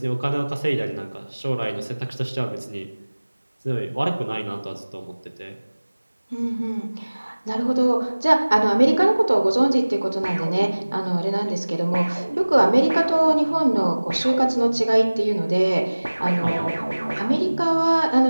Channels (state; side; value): inverted; both; correlation -1.00